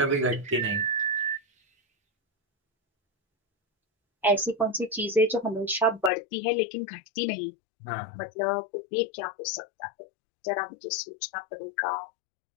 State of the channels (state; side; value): drops out; right; at 6.1 s